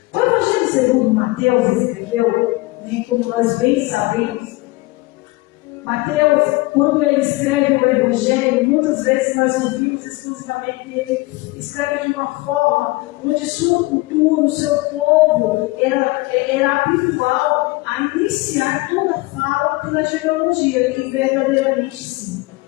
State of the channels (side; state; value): right; quieter; 22.1 dB